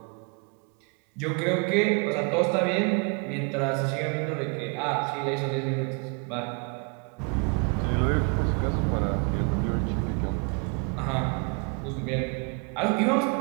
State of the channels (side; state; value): left; quieter; 34.9 dB